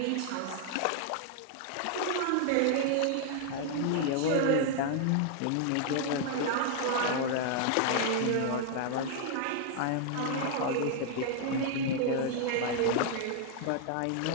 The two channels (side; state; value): both; different; correlation 0.00